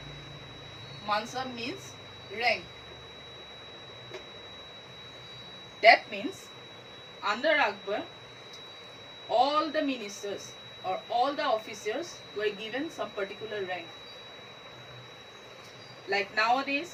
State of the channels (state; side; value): identical; both; correlation 1.00